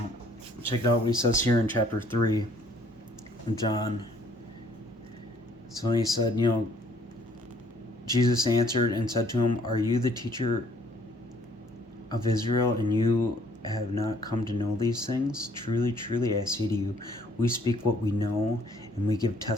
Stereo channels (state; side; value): normal; both; correlation 0.61